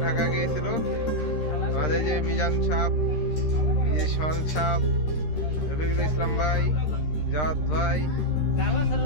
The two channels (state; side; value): late; right; 13 ms